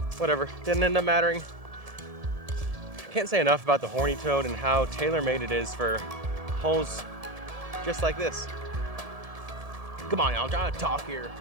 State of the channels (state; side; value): late; left; 1.7 ms